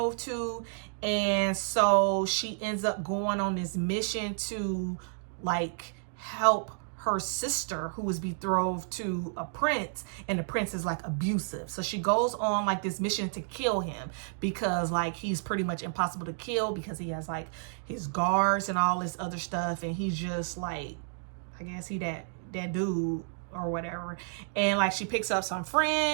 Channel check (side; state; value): left; silent; digital silence